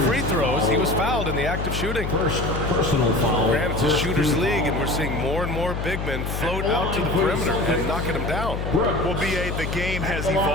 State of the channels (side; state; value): left; noise; hum, 4 dB below the sound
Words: free throws. He was fouled in the act of shooting. First personal foul. Granted, it's a shooter's league, and we're seeing more and more big men float out to the perimeter and knocking them down. Well, B.A., the game has